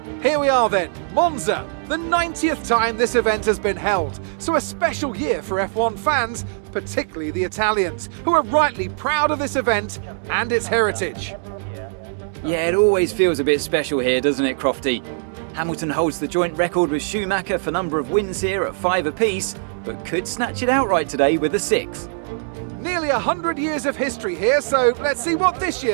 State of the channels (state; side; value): silent; left; digital silence